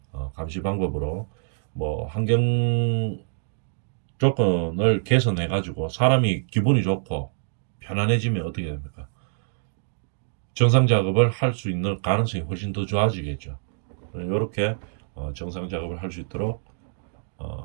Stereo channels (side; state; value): left; silent; digital silence